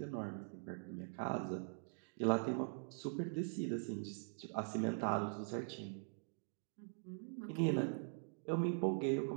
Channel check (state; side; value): silent; left; digital silence